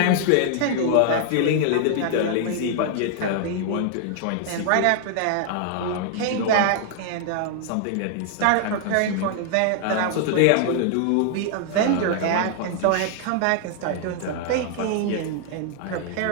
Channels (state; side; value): different; both; correlation 0.00